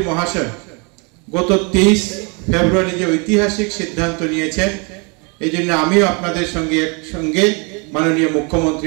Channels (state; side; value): quieter; left; 32.6 dB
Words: মহাশয় গত 23 ফেব্রুয়ারি যে ঐতিহাসিক সিদ্ধান্ত নিয়েছেন, এই জন্য আমিও আপনাদের সঙ্গে মাননীয় মুখ্যমন্ত্রী